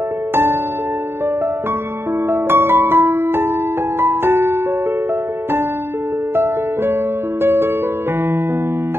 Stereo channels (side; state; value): left; late; 0.11 ms